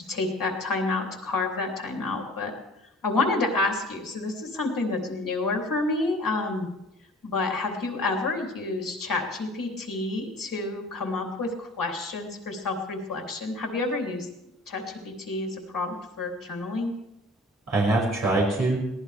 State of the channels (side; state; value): both; normal; correlation 0.46